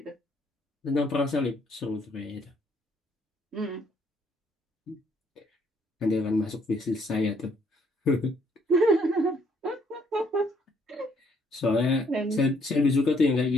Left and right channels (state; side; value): normal; both; correlation 0.67